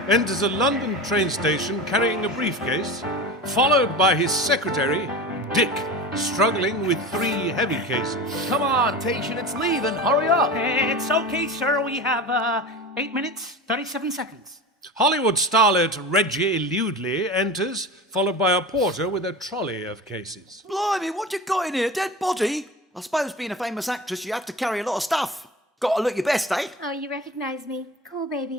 enters a London train station carrying a briefcase, followed by his secretary, Dick, struggling with 3 heavy cases. Come on, Tation, it's leaving. Hurry up. It's okay, sir. We have 8 minutes, 37 seconds. Hollywood starlet Reggie Ludley enters, followed by a porter with a trolley of cases. Blimey, what you got in here? Dead body? I suppose being a famous actress, you have to carry a lot of stuff. Got to look your best, eh? Oh, you recognize me. Cool,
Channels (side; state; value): both; normal; correlation 0.30